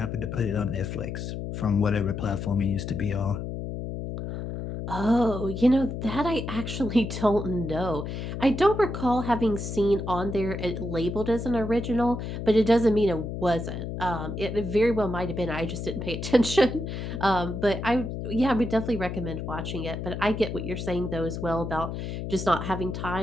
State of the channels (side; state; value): left; noise; hum, 5 dB below the sound